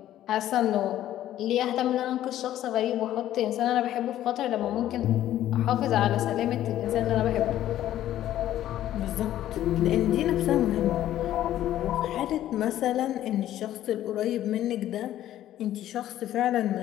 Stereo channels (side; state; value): right; quieter; 12.7 dB